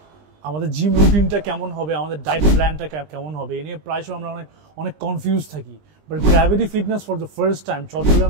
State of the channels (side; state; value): left; late; 20 ms